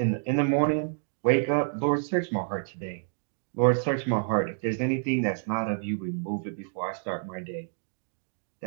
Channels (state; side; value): silent; left; digital silence